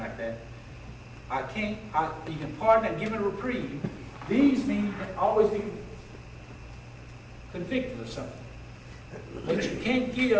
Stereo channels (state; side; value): identical; both; correlation 1.00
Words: that. You can pardon and give a reprieve. These mean you can always be convicted of something. But you can't